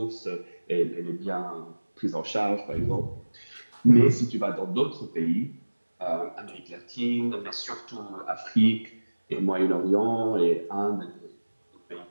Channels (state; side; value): inverted; both; correlation -1.00